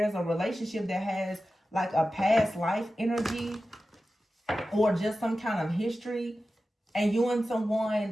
a relationship that has like a past life energy or just some kind of history. And you and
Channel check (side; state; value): both; normal; correlation 0.94